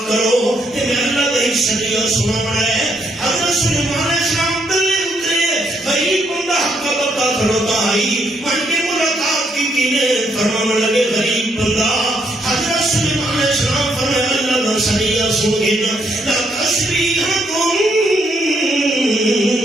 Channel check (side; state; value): both; normal; correlation 0.74